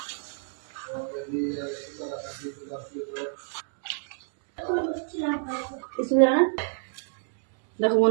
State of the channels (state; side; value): silent; left; 59 dB below the other